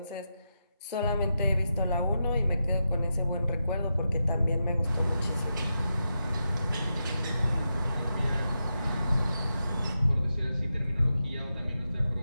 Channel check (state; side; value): inverted; both; correlation -0.87